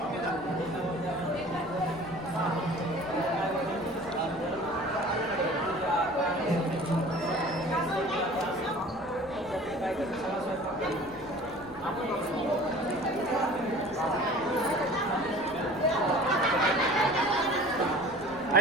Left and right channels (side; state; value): left; noise; rumble, 21 dB below the sound